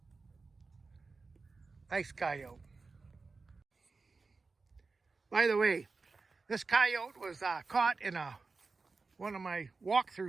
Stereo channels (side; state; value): left; quieter; 4.1 dB